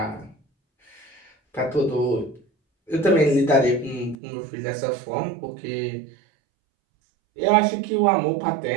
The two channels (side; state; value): left; drops out; at 4.2 s